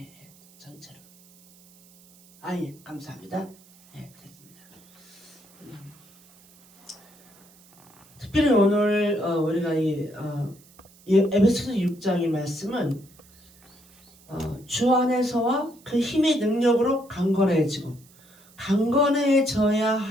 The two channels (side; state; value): right; noise; hiss, 27 dB below the sound